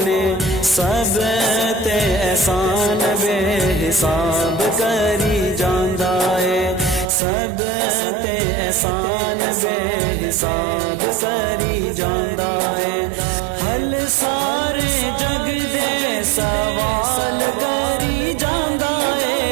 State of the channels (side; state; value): left; drops out; at 7.1 s